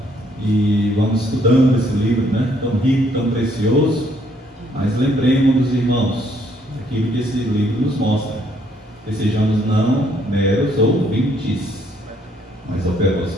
E vamos estudando esse livro, né? Tão rico, tão precioso, mas lembremos dos irmãos, aquilo que esse livro nos mostra, que sejamos não meros ouvintes, mas operosos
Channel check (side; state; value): both; normal; correlation 0.67